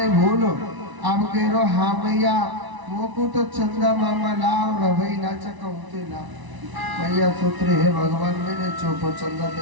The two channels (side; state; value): left; late; 1.0 ms